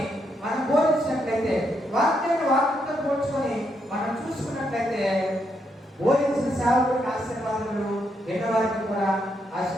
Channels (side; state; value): both; normal; correlation 0.79